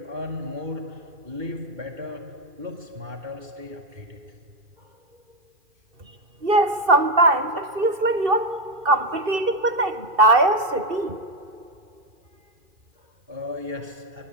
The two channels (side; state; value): left; late; 2.7 ms